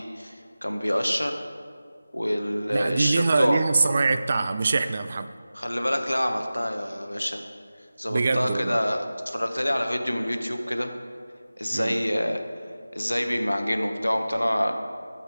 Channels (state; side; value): inverted; both; correlation -0.96